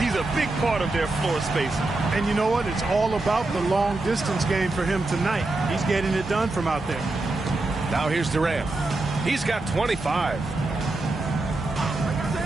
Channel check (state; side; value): quieter; left; 3.0 dB